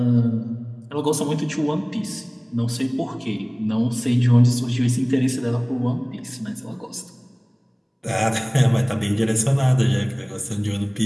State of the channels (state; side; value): identical; both; correlation 1.00